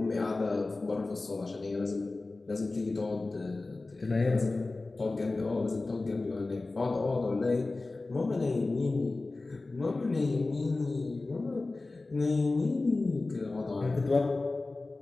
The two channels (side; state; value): right; quieter; 3.3 dB